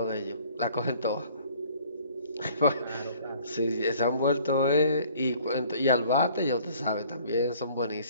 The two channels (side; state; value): both; inverted; correlation -0.55